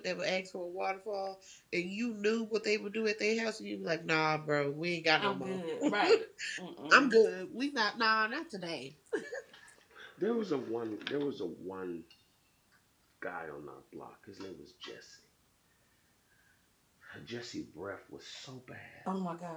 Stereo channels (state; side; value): identical; both; correlation 1.00